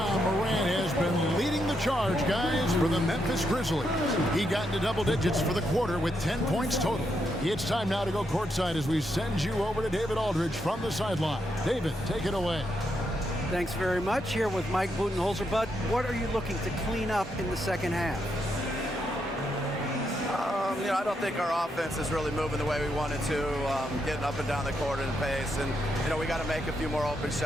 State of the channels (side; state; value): both; normal; correlation 0.80